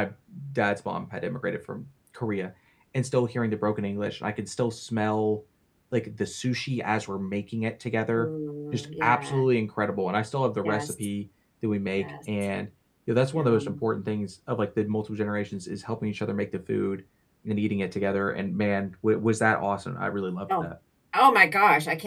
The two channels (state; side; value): identical; both; correlation 1.00